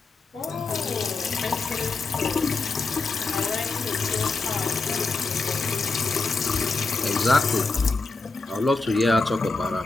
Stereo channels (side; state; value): right; quieter; 3.7 dB